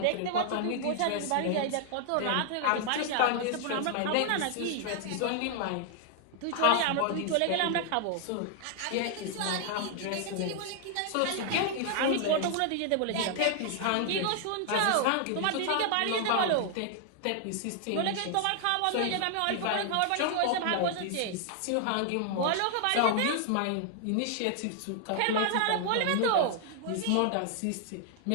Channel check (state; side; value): different; both; correlation 0.00